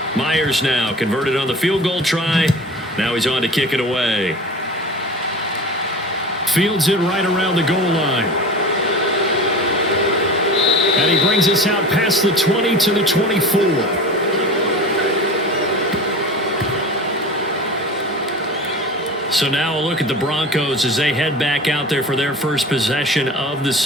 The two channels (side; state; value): both; normal; correlation 0.35